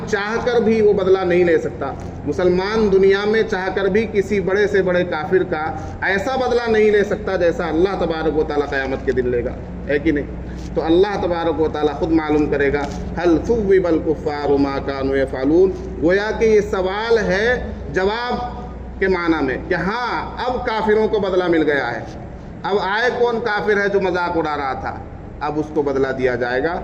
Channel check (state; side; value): identical; both; correlation 1.00